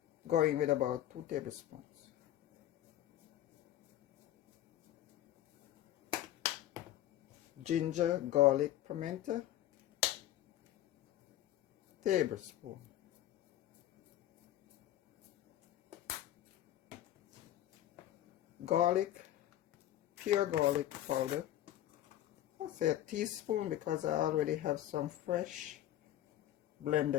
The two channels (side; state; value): right; quieter; 13.0 dB